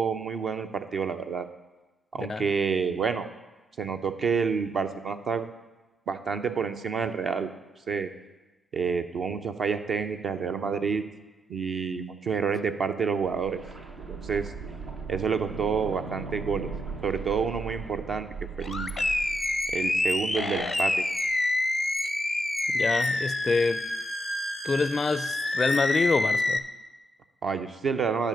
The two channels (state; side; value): normal; both; correlation 0.80